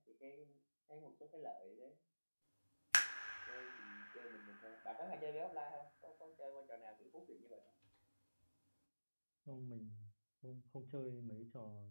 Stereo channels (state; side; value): inverted; both; correlation -1.00